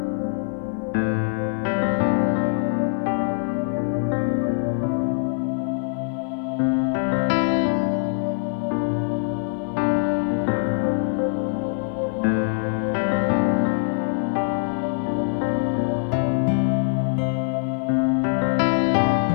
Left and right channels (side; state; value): right; silent; 63 dB below the other